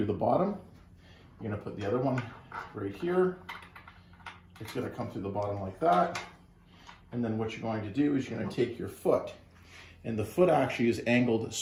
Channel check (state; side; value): identical; both; correlation 1.00